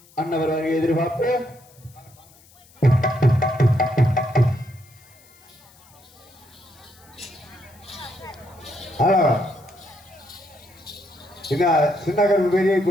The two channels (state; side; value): noise; left; hiss, 27 dB below the sound